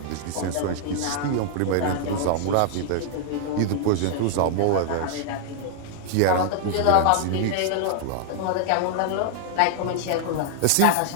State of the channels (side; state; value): both; different; correlation 0.00